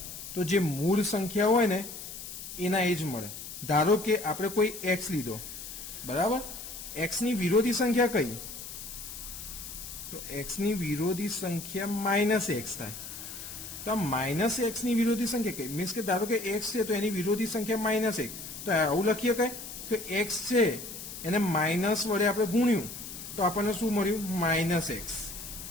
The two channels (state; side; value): noise; left; hiss, 10 dB below the sound